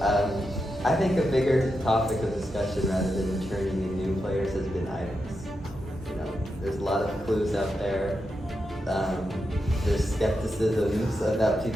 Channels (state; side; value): normal; both; correlation 0.86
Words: I think a bigger topic of discussion rather than returning in new players has been items. You know, there's a lot of clues out there. There's skepticisms about